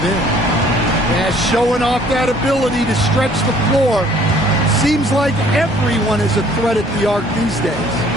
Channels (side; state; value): both; normal; correlation 0.58